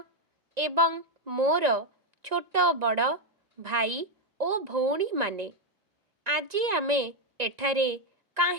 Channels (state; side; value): late; left; 2.0 ms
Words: एवं मोर छोट बड़ भाई ओ भौणी माने, आजी आमे एठारे